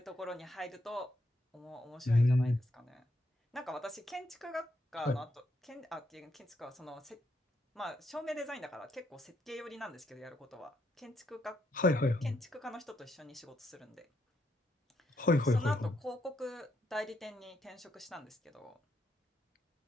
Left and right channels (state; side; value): normal; both; correlation 0.77